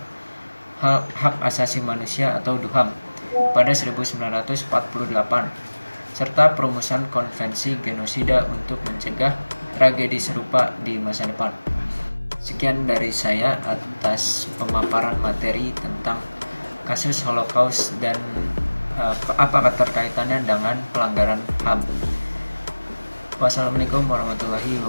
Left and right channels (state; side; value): inverted; both; correlation -1.00